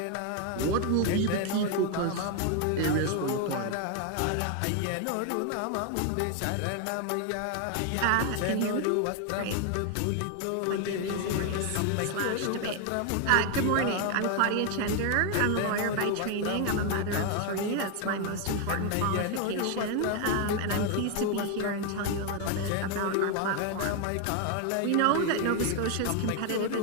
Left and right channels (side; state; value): both; different; correlation 0.01